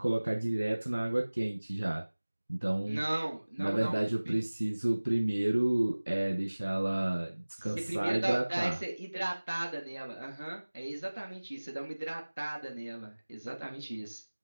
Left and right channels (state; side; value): inverted; both; correlation -1.00